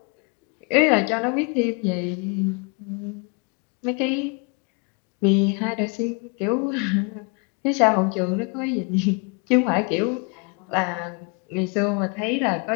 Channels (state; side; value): quieter; right; 34.1 dB